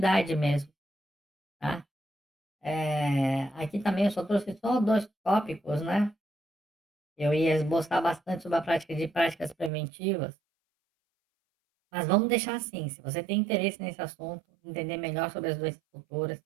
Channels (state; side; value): drops out; left; at 9.7 s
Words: mesmo, tá. Aqui também eu só trouxe só 2 tópicos, né, eu ia esboçar bastante sobre a prática de práticas preventivas, mas vamos deixar assim, se você tem interesse nesse assunto, entender melhor sobre as doenças futuras,